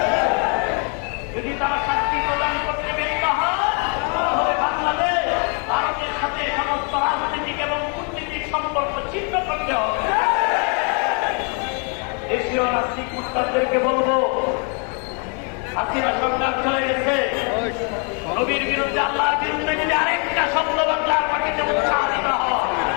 যদি তারা শাস্তি প্রদান করতে ব্যর্থ হয় তাহলে বাংলাদেশ ভারতের সাথে সমস্ত রাজনৈতিক এবং কূটনীতিক সম্পর্ক ছিন্ন করতে হবে। দেশীয় রাজনীতিক মুস্তাদদেরকে বলবো, হাসিনা সরকার চলে গেছে, নবীর বিরুদ্ধে আল্লাহর বিরুদ্ধে যদি আরেকটা শব্দ বাংলার মাটিতে উচ্চারিত হয়,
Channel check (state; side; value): quieter; right; 38.0 dB